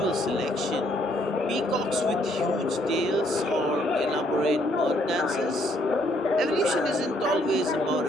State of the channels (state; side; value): normal; both; correlation 0.68